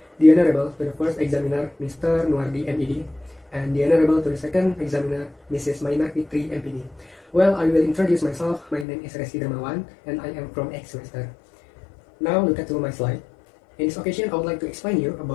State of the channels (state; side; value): drops out; right; at 8.8 s